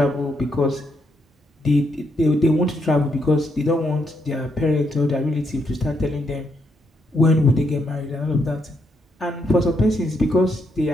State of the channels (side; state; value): both; normal; correlation 0.77